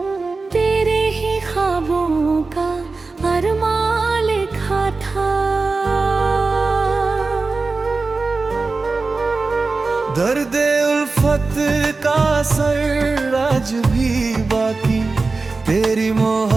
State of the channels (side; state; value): left; quieter; 3.8 dB